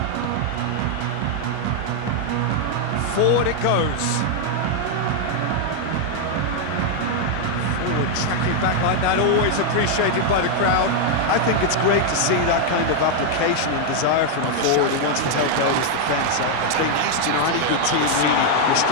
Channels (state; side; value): different; both; correlation 0.00